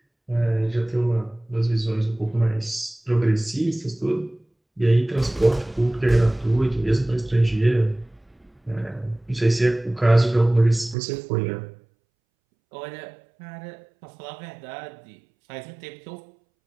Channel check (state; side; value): drops out; left; at 11.0 s